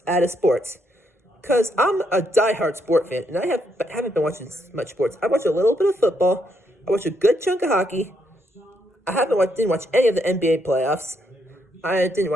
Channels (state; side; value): normal; both; correlation 0.76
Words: out of sports. Because I'm a diehard sport fan, and I haven't been watching much sports. I watched a little bit of football. I watched a good chunk of hockey. I didn't watch any of the NBA playoffs. I didn't